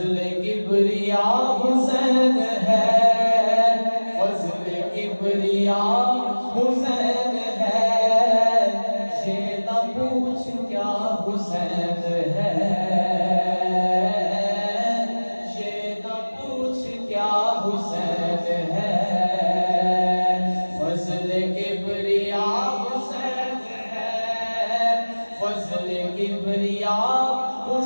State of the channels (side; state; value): both; inverted; correlation -1.00